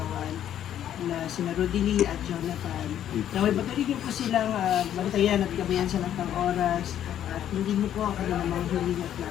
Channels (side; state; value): right; quieter; 10.7 dB